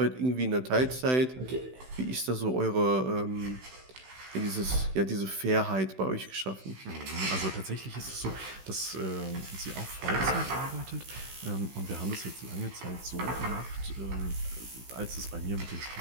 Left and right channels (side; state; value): left; late; 16 ms